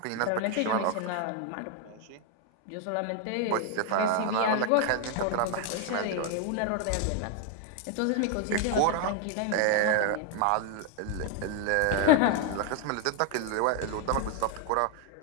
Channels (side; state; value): both; different; correlation 0.00